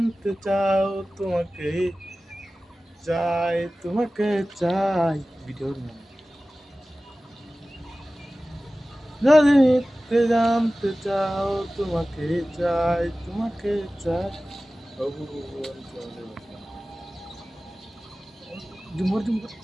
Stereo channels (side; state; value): both; normal; correlation 0.96